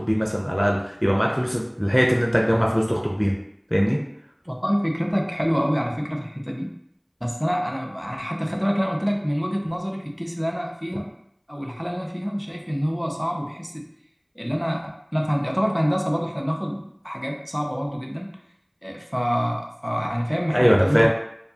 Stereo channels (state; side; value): identical; both; correlation 1.00